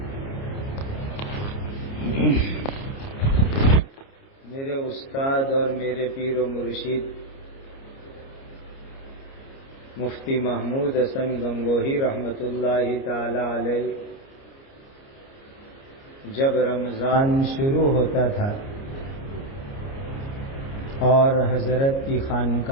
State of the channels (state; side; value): late; right; 29 ms